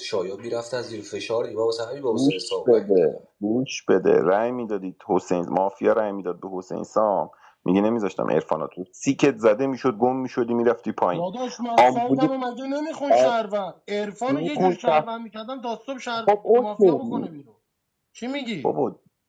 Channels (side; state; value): both; identical; correlation 1.00